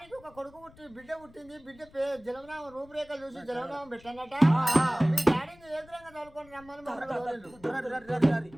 ఒక కొడుకు బిడ్డ పుట్టింది బిడ్డ జలవనామం రూపురేఖలు చూసి జలవనామం పెట్టనట మీ డాడీని ఎదురంగా తోలుకొని రమ్మని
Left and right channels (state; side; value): noise; left; rumble, 25 dB below the sound